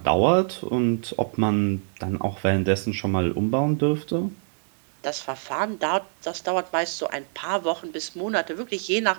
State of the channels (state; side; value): silent; left; digital silence